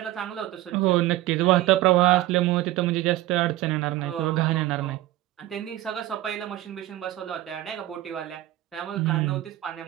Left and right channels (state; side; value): quieter; left; 15.6 dB